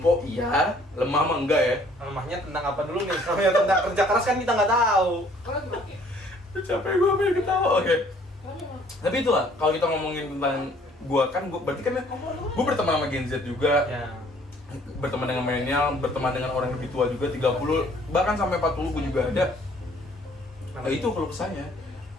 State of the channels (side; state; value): both; normal; correlation 0.59